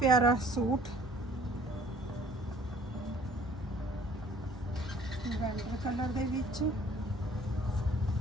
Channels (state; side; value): normal; both; correlation 0.55